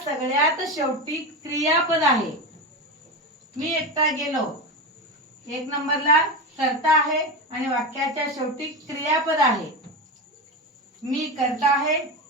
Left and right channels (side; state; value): both; normal; correlation 0.20